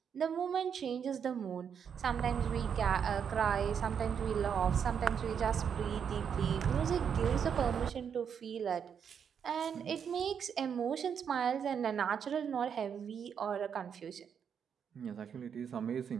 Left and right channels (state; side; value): quieter; left; 7.5 dB